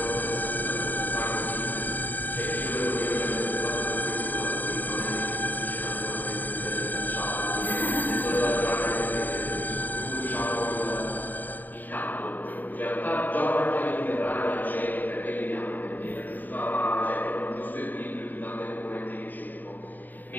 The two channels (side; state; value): right; late; 0.087 ms